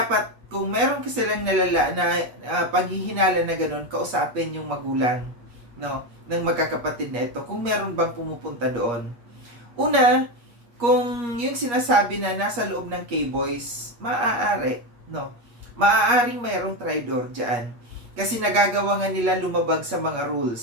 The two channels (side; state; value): left; late; 8.4 ms